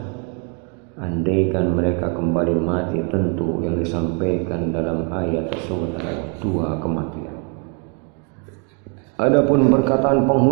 Andaikan mereka kembali mati, tentu yang disampaikan dalam ayat tersebut adalah dua kematian. Adapun perkataan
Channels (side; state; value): left; quieter; 34.1 dB